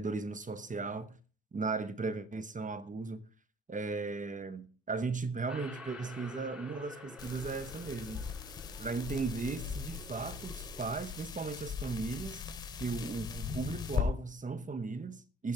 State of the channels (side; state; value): both; normal; correlation 0.54